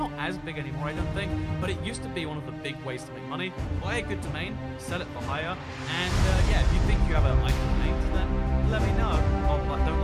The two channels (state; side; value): identical; both; correlation 1.00